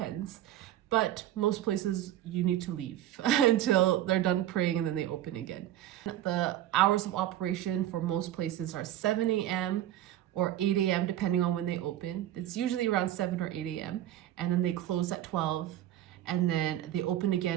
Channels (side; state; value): left; quieter; 12.8 dB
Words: But most places you need to leave until they're done praying and then they open again. The hours of operation for most places are 7 a.m. or 8 a.m. depending on when they open. It's usually around 7 or 8 a.m. and then they close at 12 and then they open